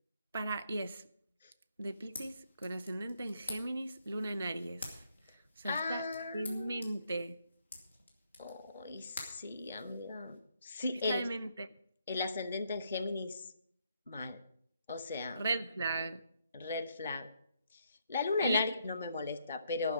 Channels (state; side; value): inverted; both; correlation -0.74